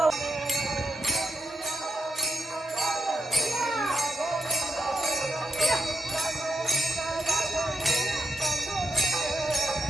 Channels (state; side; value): normal; both; correlation 0.84